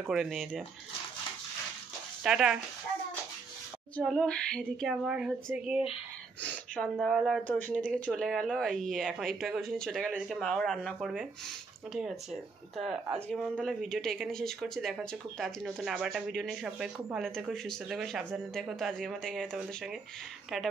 করে নিয়ে যা। টাটা। চলো, এদিকে আমার হচ্ছে গিয়ে সন্ধ্যাবেলা তো ওষুধের দিকে চলে গেল, এখন একটু আগে ওষুধে চলে গেল, এদিকে মাও রান্না করবে, ঠিক আছে। তা আজকে মন তাহলে ভিডিওটা এখানে শেষ করছি, দেখা হচ্ছে খুব তাড়াতাড়ি নতুন আবার একটা ভিডিও নিয়ে। সবাই খুব ভালো থেকো, সুস্থ থেকো, সাবধানে থেকো। তো আজকের মতো এখানে তোমাদের সঙ্গে টাটা,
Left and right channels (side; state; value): left; quieter; 4.6 dB